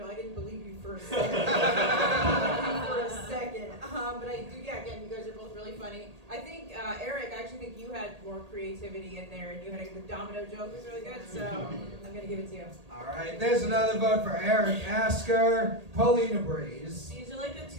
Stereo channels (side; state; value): left; late; 1.8 ms